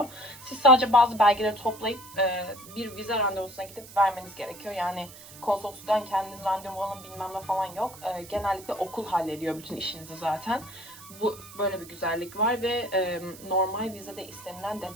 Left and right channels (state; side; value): noise; right; hiss, 17 dB below the sound